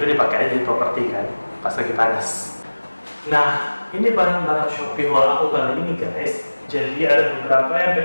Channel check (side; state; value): both; inverted; correlation -1.00